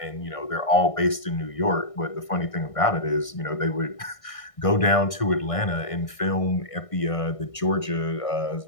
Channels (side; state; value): right; late; 1.6 ms